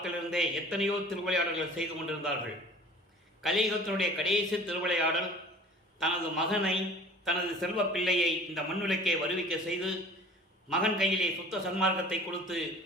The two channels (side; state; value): both; normal; correlation 0.46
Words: எத்தனையோ திருவிளையாடல்கள் செய்து கொண்டிருந்தார்கள். கலியுகத்தினுடைய கடைசி திருவிளையாடல் தனது மகனை, தனது செல்வ பிள்ளையை இந்த மண்ணுலக்கே வருவிக்க செய்து மகன் கையிலே சுத்த சன்மார்க்கத்தை கொடுத்து